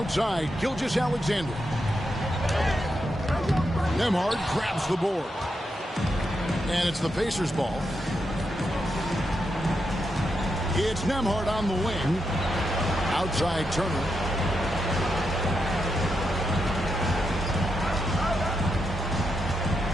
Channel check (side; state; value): both; normal; correlation 0.84